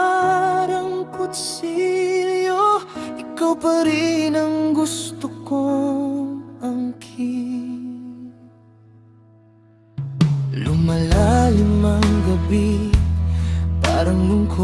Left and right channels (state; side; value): identical; both; correlation 1.00